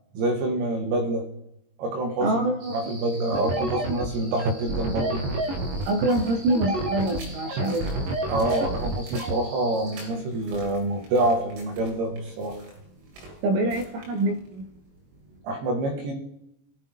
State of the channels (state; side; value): late; left; 22 ms